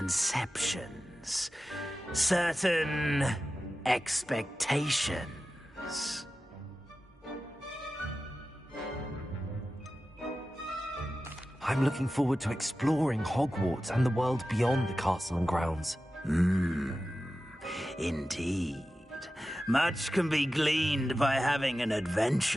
Certain expectations. I'm looking forward to exploring Hogwarts and the world beyond the castle and grounds. Indeed. Much can be gleaned by having an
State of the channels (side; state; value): both; normal; correlation 0.94